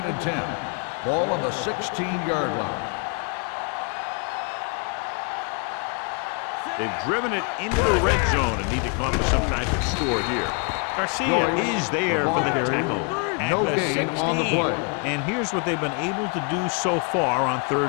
and 10. Ball on the 16-yard line. They've driven it into the red zone and need to come up with some type of score here. Garcia is there for the tackle at the 16. And here's what they've been able to do so far on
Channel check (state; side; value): quieter; right; 35.9 dB